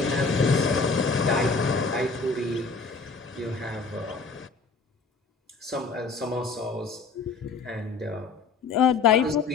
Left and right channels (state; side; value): quieter; right; 4.5 dB